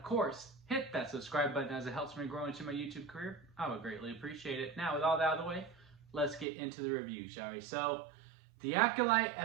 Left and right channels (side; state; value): left; drops out; at 6.5 s